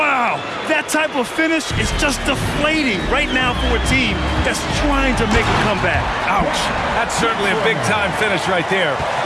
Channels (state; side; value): identical; both; correlation 1.00